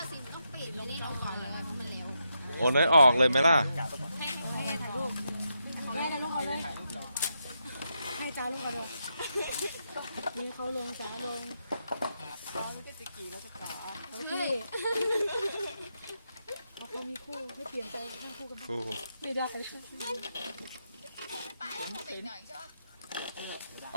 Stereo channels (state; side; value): inverted; both; correlation -0.83